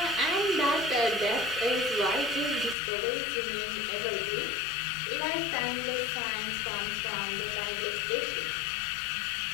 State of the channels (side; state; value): right; drops out; at 2.8 s